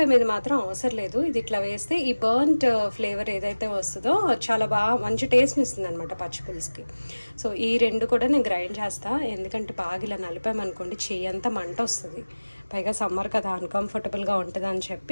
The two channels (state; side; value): inverted; both; correlation -1.00